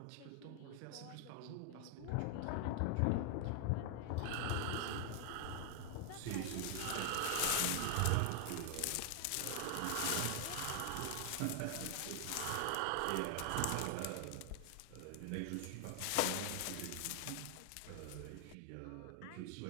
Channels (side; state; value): both; different; correlation 0.00